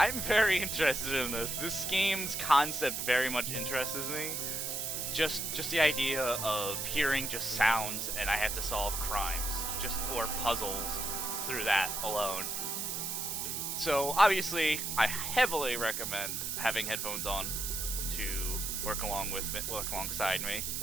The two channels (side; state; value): right; noise; hiss, 2 dB below the sound